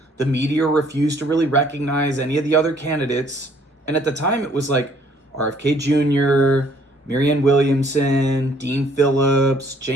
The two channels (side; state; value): both; normal; correlation 0.62